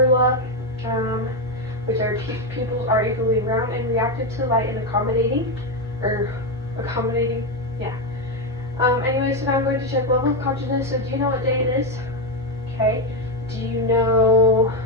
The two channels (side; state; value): both; normal; correlation 0.09